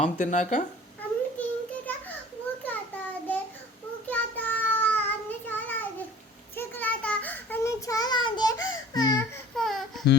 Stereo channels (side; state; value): both; normal; correlation 0.46